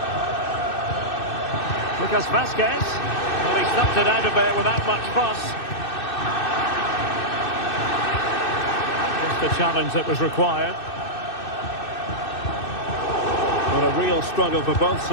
Lucas Vazquez. Well, he stuffed it out of there without much fuss. Just the challenge that was required. What a real struggle for both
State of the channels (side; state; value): right; late; 2.6 ms